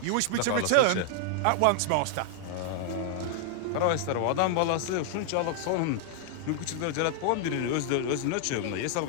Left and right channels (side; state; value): both; different; correlation 0.00